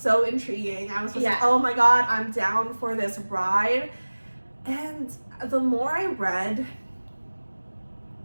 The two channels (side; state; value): both; inverted; correlation -1.00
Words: intriguing. I was just like, oh my god, I'm down for this ride. And the more I read,